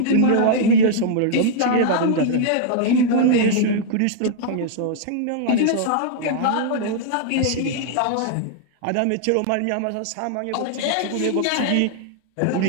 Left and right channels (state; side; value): different; both; correlation -0.01